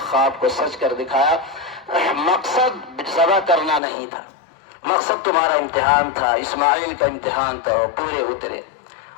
خواب کو سچ کر دکھایا۔ مقصد ذبح کرنا نہیں تھا، مقصد تمہارا امتحان تھا، اسماعیل کا امتحان تھا، پورے اترے۔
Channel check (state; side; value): drops out; right; at 3.8 s